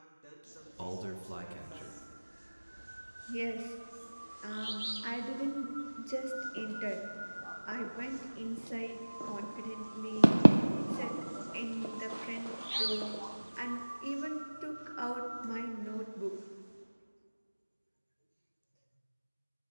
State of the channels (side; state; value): both; inverted; correlation -1.00